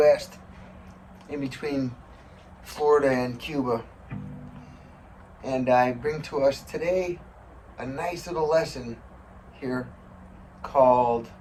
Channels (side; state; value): both; identical; correlation 1.00